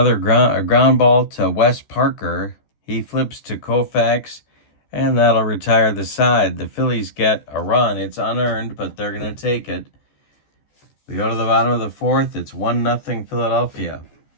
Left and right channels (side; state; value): right; late; 14 ms